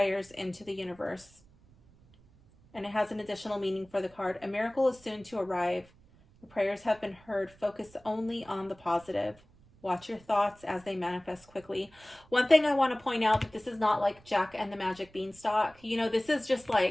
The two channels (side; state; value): right; noise; rumble, 27 dB below the sound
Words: into the universe. And it has an additional meaning for the card. A miracle is soon to arrive. Your prayers have been heard. Focus only on the positive. Watch your thoughts as they manifest quickly. One thing I want to point out, that this is not like Jack and the Magic Beanstalk. You know, this is just